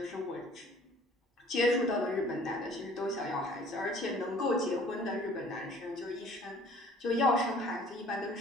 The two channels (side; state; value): both; normal; correlation 0.53